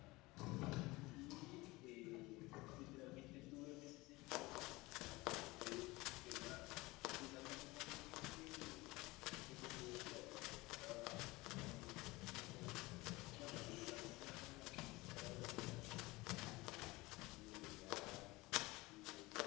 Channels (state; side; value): quieter; right; 21.8 dB